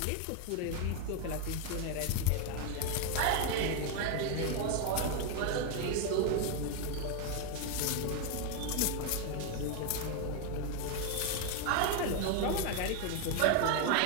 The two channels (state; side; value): different; both; correlation 0.01